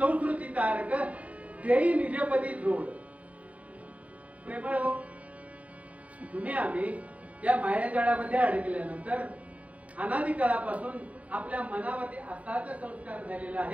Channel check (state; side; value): late; left; 0.068 ms